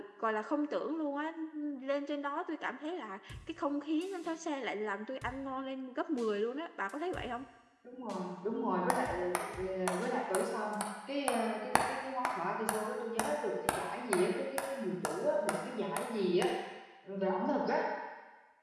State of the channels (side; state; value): both; identical; correlation 1.00